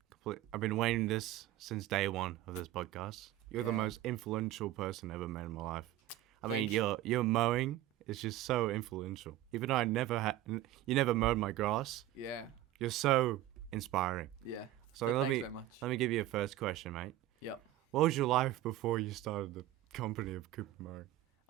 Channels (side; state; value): left; quieter; 13.9 dB